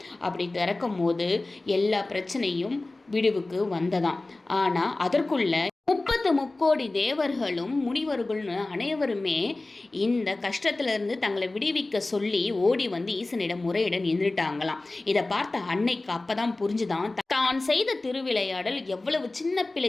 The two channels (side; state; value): right; quieter; 3.0 dB